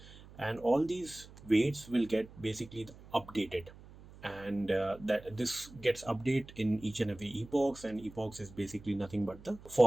and all these weights will get basically updated, and that this gets updated in each and every epochs, and epochs is basically nothing but the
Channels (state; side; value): noise; right; hum, 19 dB below the sound